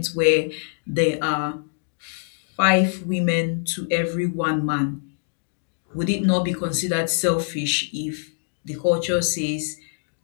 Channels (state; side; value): silent; right; digital silence